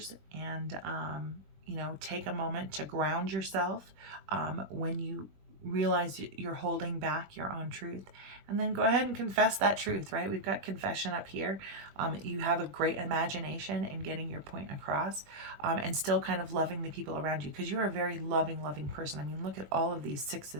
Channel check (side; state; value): left; late; 21 ms